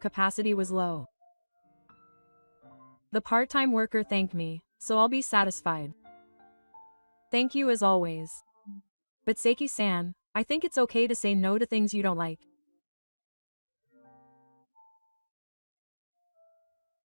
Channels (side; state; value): both; inverted; correlation -1.00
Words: was low. The part-time worker thanked me, so I'll be satisfied. Thank you as always. But Seiki-san, I think it's okay to say no to things you don't like.